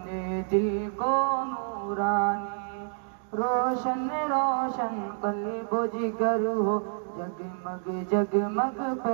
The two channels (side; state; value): left; silent; digital silence